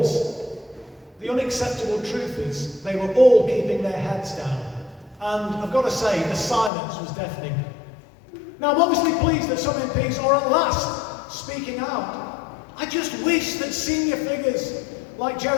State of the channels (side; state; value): right; drops out; at 6.7 s